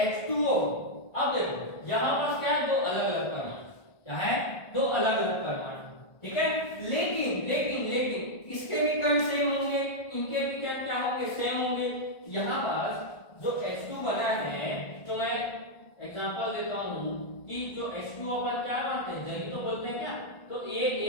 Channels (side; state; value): right; late; 1.5 ms